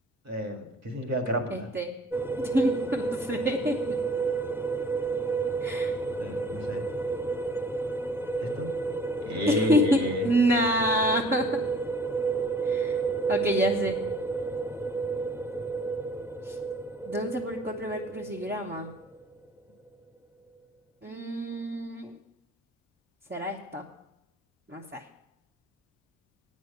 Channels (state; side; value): normal; both; correlation 0.52